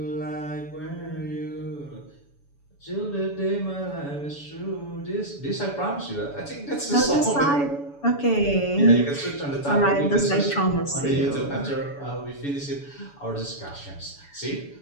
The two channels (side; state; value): right; late; 7.0 ms